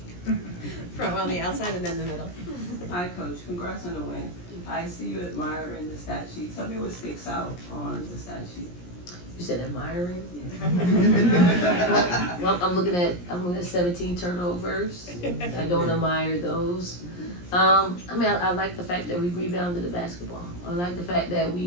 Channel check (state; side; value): late; right; 17 ms